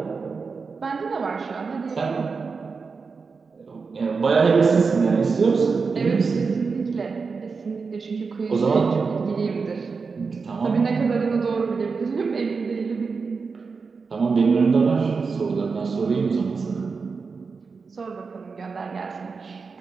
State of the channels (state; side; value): quieter; left; 4.9 dB